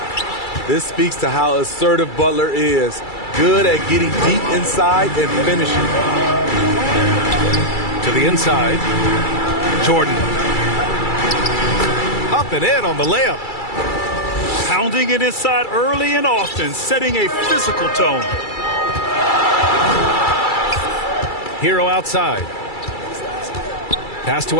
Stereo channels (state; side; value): late; right; 2.3 ms